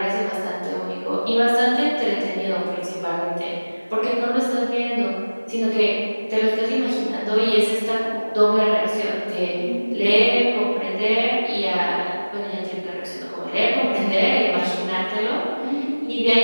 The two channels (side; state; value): both; inverted; correlation -1.00